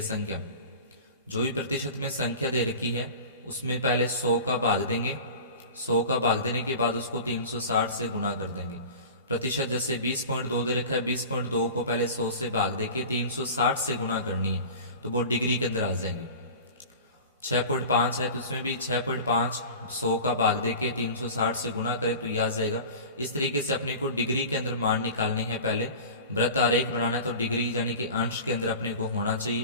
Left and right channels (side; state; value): both; inverted; correlation -0.37